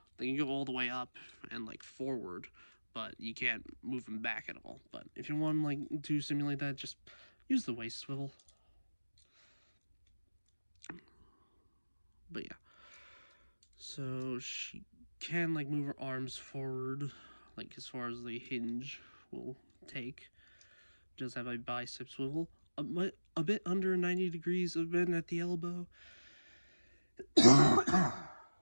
all the way up and like forward, but you can't move them back at all. But if you want like to simulate that, just use the waist swivel. But yeah, so she can like move her arms forward, like as far as the hinge will take. Does have a bicep swivel, a bit under 90 degrees of bend at the elbow.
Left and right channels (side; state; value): both; inverted; correlation -1.00